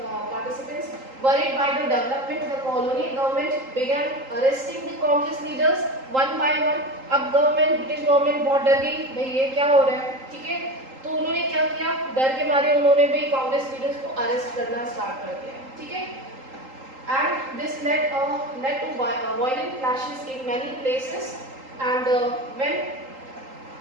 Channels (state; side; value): late; left; 3.8 ms